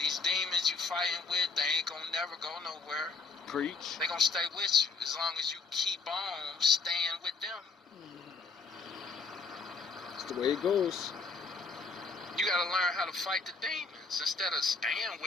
demons you fighting with, they ain't gonna never go nowhere. Preach. They gonna stay with you as long as you keep on staying with them. That's the way it goes. You gotta learn how to fight the demons instead of staying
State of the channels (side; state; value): right; quieter; 4.3 dB